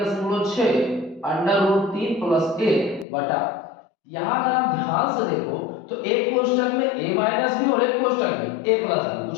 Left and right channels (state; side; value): drops out; right; at 3.1 s